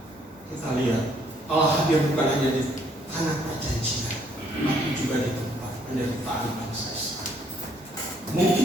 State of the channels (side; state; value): both; normal; correlation 0.66